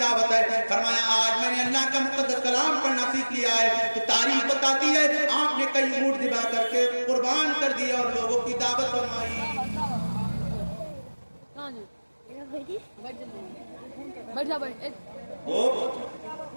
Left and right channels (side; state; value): both; inverted; correlation -1.00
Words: ہے؟ فرمایا آج میں نے اللہ کا مقدس کلام پڑھنا سیکھ لیا ہے. تو تاریخ بتاتی ہے آپ نے کئی اونٹ ذبح کر کے قربان کر دیا اور لوگوں کی دعوت فرمائی. وہ